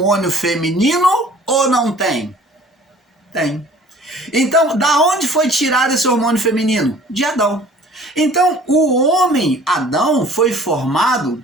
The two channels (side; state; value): both; normal; correlation 0.50